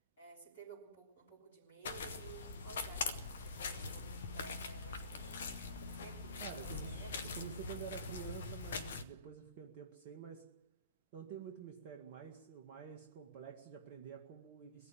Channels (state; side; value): inverted; both; correlation -0.45